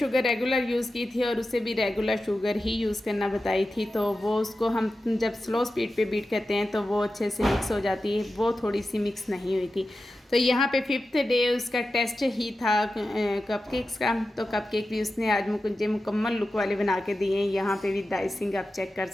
रेगुलर यूज़ की थी और उसे भी रेगुलर शुगर ही यूज़ करना बताई थी। तो वो उसको हम जब स्लो स्पीड पे बीट करते हैं तो वो अच्छे से मिक्स हो जाती है, वो थोड़ी सी मिक्स नहीं हुई थी। तो यहाँ पे फिफ्थ डे उसका टेस्ट ही था कपकेक्स का। तो कपकेक भी उसने आज मुझे मुकम्मल लुक वाले बना के दिए हैं। यहाँ पे भी आइसिंग आप चेक कर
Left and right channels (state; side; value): normal; both; correlation 0.93